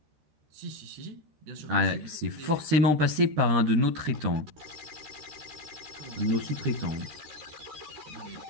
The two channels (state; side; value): late; left; 13 ms